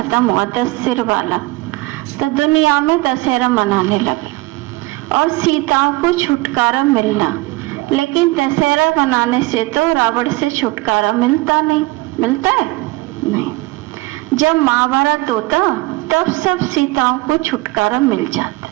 हुआ, 10 सिर वाला, तो दुनिया में दशहरा मनाने लगे और सीताओं को छुटकारा मिलना। लेकिन दशहरा मनाने से तो रावण से छुटकारा मिलता नहीं। मिलता है? नहीं। जब महाभारत होता तब सब सीताओं को छुटकारा मिल जाता।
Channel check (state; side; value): quieter; left; 21.0 dB